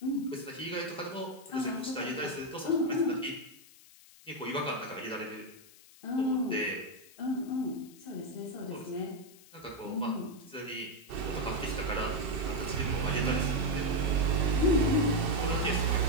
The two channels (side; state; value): left; noise; hiss, 23 dB below the sound